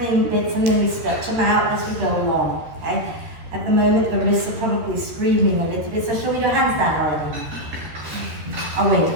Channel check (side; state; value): left; late; 13 ms